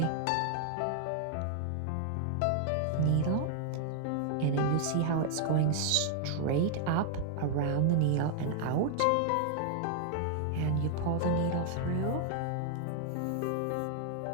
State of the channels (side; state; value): both; different; correlation 0.00